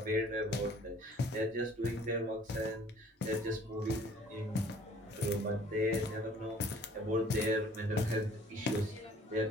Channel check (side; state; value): both; normal; correlation 0.54